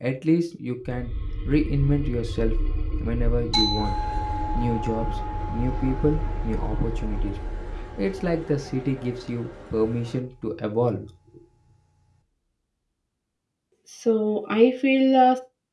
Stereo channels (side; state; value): both; identical; correlation 1.00